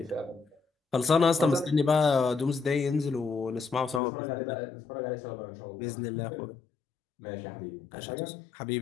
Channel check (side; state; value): right; drops out; at 4.0 s